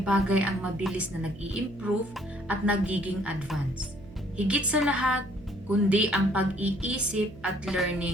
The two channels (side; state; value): right; noise; hum, 19 dB below the sound